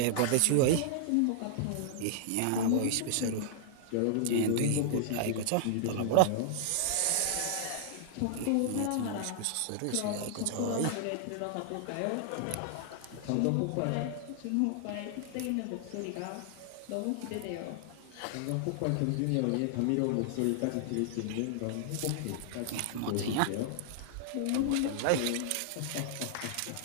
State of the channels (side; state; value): both; different; correlation -0.01